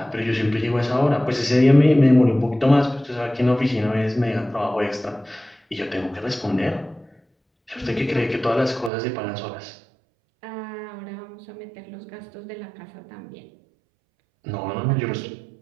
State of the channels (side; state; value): left; drops out; at 8.9 s